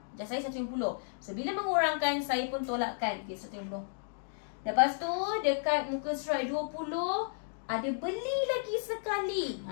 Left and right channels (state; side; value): silent; right; digital silence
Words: Just saya 150. So bila mengurangkan, saya pun tolakkan. Okay, 150. Lepas tu dekat muka surat 20 ada beli lagi sekali.